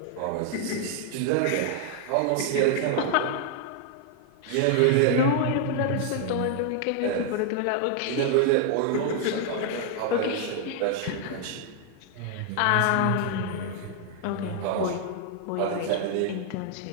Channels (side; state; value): both; different; correlation 0.00